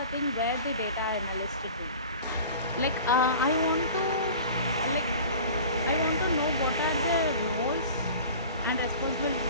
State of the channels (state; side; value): inverted; both; correlation -0.40